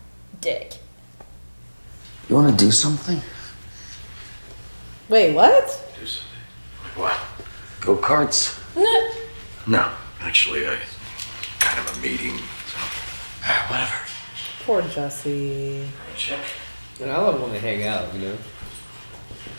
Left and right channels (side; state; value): both; inverted; correlation -1.00